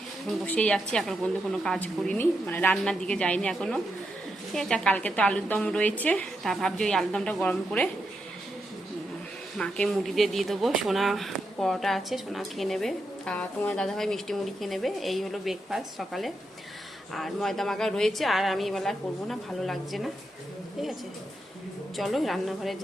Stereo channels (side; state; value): both; normal; correlation 0.84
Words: বসেই যাচ্ছি। এখন পর্যন্ত কোনো কাজ করিনি, মানে রান্নার দিকে যাইনি এখনও, ঠিক আছে। কালকে তো আলুর দম রয়েছে, তা ভাবছি ওই আলুর দমটা গরম করে মাকে মুড়ি দিয়ে দেবো। সোনা পরোটা আছে, সোনা খেয়ে নেবে। আর তোমার দাদাভাই মিষ্টি মুড়ি খেয়ে নেবে। এই হলো ব্রেকফাস্ট সকালে। আর ময়দা মাখা রয়েছে, আর আমি এবেলা করবো না, ভালো লাগছে না, ঠিক আছে। চলো রান্নাঘরে